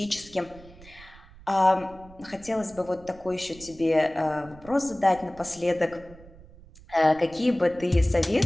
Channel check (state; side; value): noise; right; rumble, 22 dB below the sound